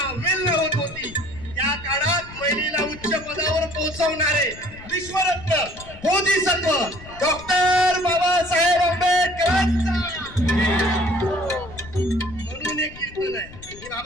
वेल्ह होत होती त्या काळात महिलेला उच्च पदावर पोहोचवणारे विश्वरत्न बोधिसत्व डॉक्टर बाबासाहेब आंबेडकरांचा म्हणून एक कीर्तन आहे की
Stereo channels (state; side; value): noise; left; rumble, 17 dB below the sound